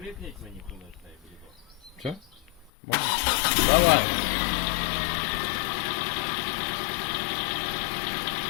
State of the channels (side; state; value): right; drops out; at 2.7 s